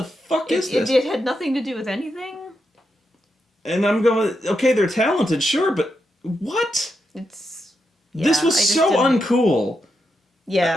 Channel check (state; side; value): normal; both; correlation 0.84